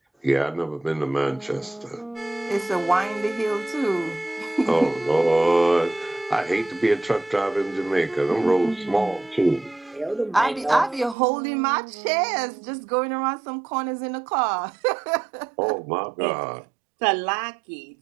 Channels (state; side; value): drops out; left; at 11.2 s